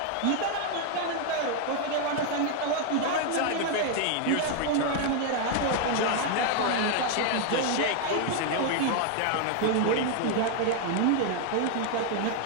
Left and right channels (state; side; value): different; both; correlation 0.00